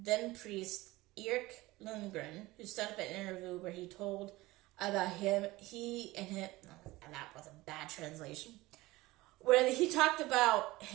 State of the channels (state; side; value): quieter; left; 19.6 dB